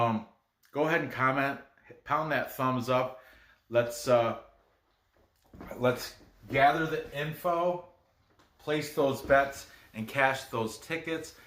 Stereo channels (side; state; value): both; identical; correlation 1.00